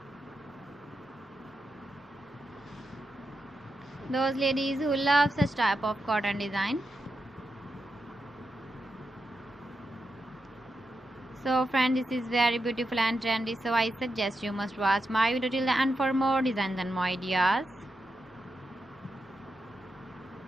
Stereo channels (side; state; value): both; normal; correlation 0.87